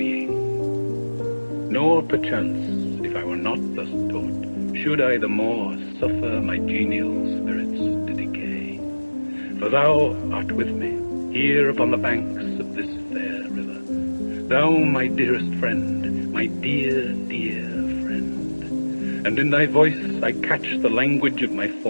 Nor perchance, if I were not thus taught, should I the more suffer my genial spirits to decay. For thou art with me, here upon the banks of this fair river, thou my dearest friend, my dear, dear friend. And in thy voice I catch the language of my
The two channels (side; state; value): both; inverted; correlation -1.00